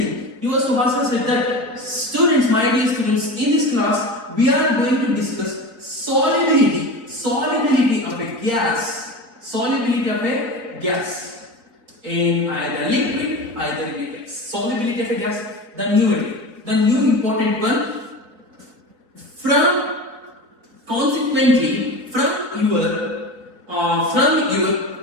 Your Subhash said that, students, my dear students, in this class, we are going to discuss solubility of a gas, in either liquid, either in a gas. Solubility of a gas. The new important one, consequently from your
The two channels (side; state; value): left; late; 4.2 ms